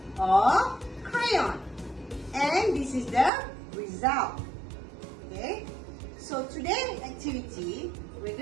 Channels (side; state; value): left; drops out; at 3.3 s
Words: or crayon, and this is the result. Okay, so today's activity we're